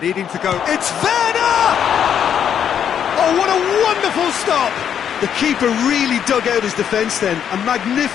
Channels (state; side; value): quieter; right; 8.7 dB